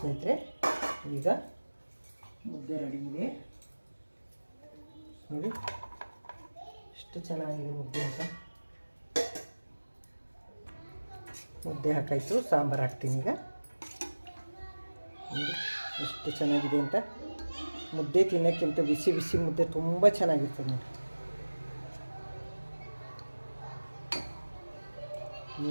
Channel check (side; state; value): both; inverted; correlation -1.00